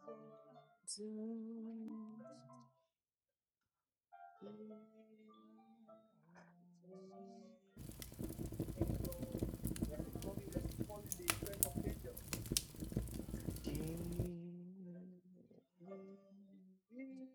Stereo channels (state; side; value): identical; both; correlation 1.00